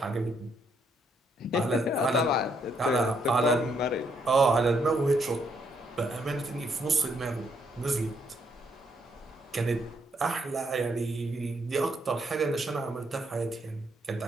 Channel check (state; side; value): normal; both; correlation 0.73